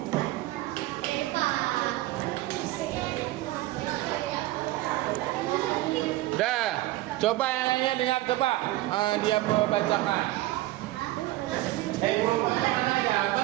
Dah, coba yang lainnya dengar coba. Dia bacakan. Kelompoknya mana ya?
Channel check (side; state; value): left; quieter; 17.3 dB